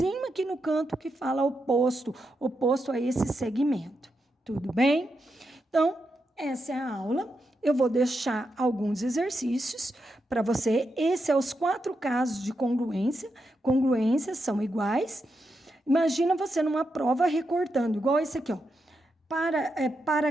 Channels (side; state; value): both; normal; correlation 0.85